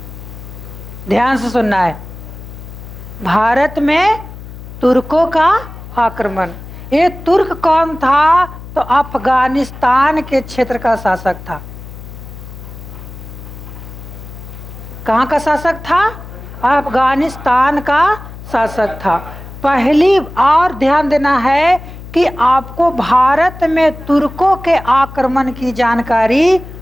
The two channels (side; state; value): left; noise; hum, 14 dB below the sound